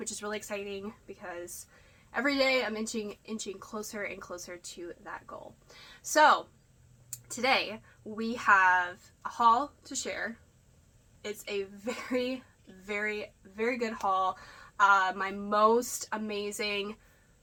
is really exciting because every day I'm inching closer and closer to that goal. So today we have a haul to share. It's a very, very, very good haul. My most amazing,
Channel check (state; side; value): identical; both; correlation 1.00